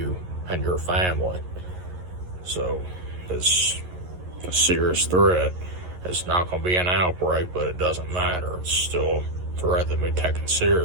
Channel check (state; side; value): late; left; 11 ms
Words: and your family. So it's a serious threat. It's not going to be an outbreak, but it doesn't matter. It's still a threat that be taken